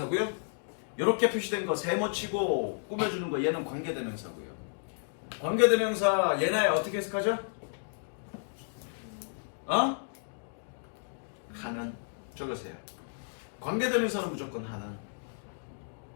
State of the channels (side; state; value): right; silent; digital silence